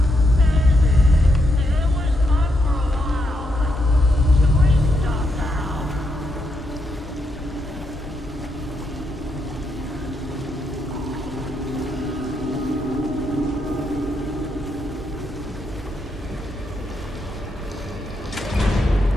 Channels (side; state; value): both; normal; correlation 0.80